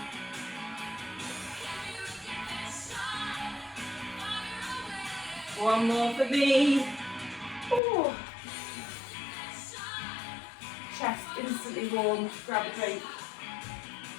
One more for me. Ooh. Chest instantly warm. Grab a drink.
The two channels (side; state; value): right; drops out; at 7.8 s